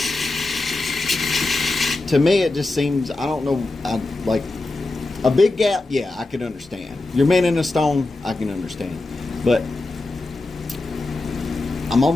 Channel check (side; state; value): right; quieter; 3.1 dB